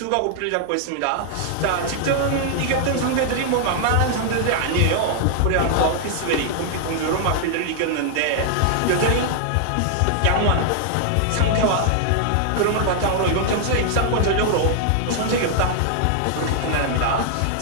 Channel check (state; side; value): different; both; correlation 0.00